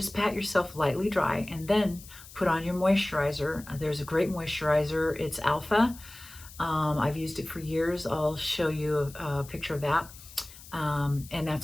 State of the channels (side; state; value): left; noise; hiss, 18 dB below the sound